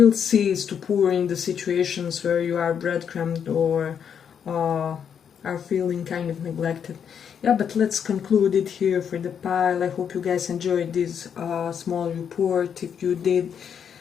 cease to pour in the situations where you are breadcrumbed or are feeling kind of neglected. Yeah, but let's conclude it here for the pile. I hope you guys enjoyed this small report. If you did,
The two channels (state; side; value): quieter; right; 7.8 dB